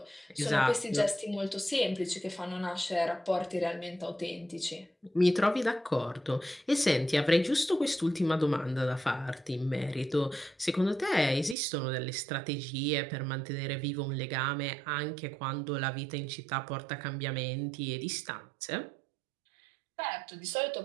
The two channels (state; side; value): drops out; left; at 11.6 s